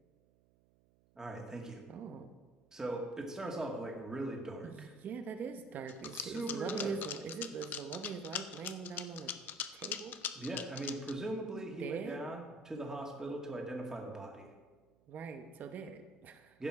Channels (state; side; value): noise; right; hum, 30 dB below the sound